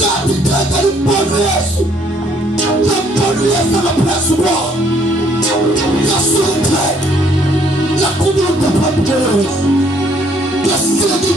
Yathi iqhenqa limbona uYesu. Lambona uYesu ngaphezulu kwakho. Yasuka. Yakubuka phambi kwaYesu. Yasika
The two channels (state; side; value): normal; both; correlation 0.65